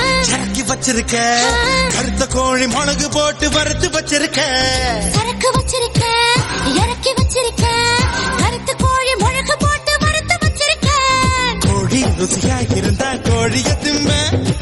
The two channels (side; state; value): both; identical; correlation 1.00